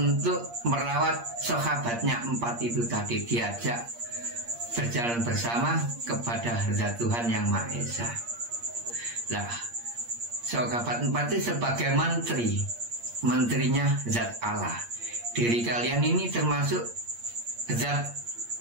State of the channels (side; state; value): left; late; 8.6 ms